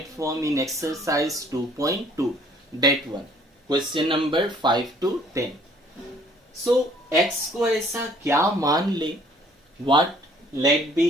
form in exercise 2.2, that one, question number 5 to 10. So x को ऐसा क्या मान ले, what let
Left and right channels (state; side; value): normal; both; correlation 0.58